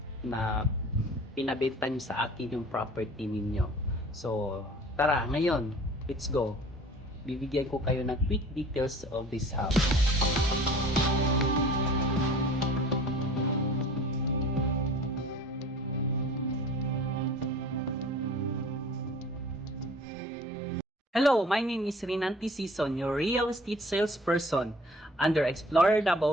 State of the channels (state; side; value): normal; both; correlation 0.46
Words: na pinabenta niyo sa akin yung property ninyo. So, tara, ngayon, let's go. Bibigyan ko kayo ng quick details of this house. Hello, my name is Rinanti Sison, your real estate salesperson under Explorer